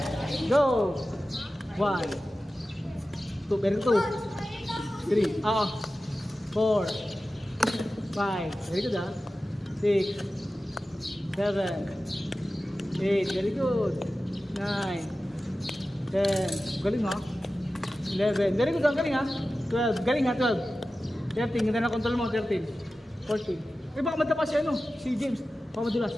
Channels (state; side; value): normal; both; correlation 0.94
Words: go. 1, 2, very good. 3, 4, 5, very good 6, 7, 8, very good. 9, 10, galing 11, very good galing 12, galing 12. 13, ganda na control mo, 13, 14. Baka madapa si si James. Baka madulas.